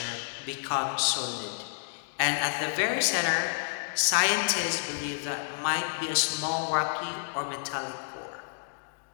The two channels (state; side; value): silent; right; digital silence